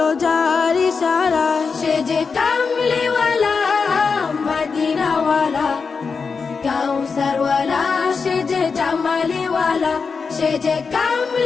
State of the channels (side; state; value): right; quieter; 5.2 dB